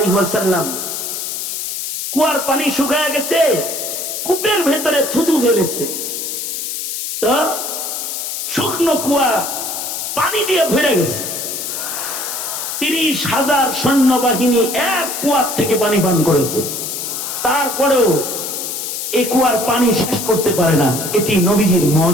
ওয়াসাল্লাম, কুয়ার পানি শুকায় গেছে, কূপের ভেতরে থুতু ঝরেছে। তো শুকনো কুয়া পানি দিয়ে ভরে গেছে। 30,000 সৈন্যবাহিনী এক কুয়ার থেকে পানি পান করেছে, তারপরেও এই কুয়ার পানি শেষ করতে পারে না। এটি নবীজির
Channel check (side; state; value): left; noise; hiss, 4 dB below the sound